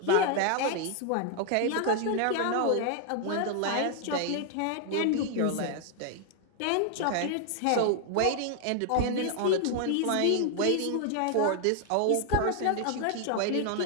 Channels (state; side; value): different; both; correlation 0.00